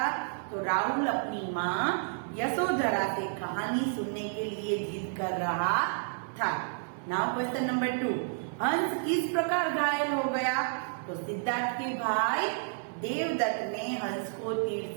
तो राहुल अपनी माँ यशोधरा से कहानी सुनने के लिए जिद कर रहा था। नाउ क्वेश्चन नंबर 2, हंस किस प्रकार घायल हो गया? तो सिद्धार्थ के भाई देवदत्त ने हंस को तीर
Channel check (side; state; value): left; silent; 57 dB below the other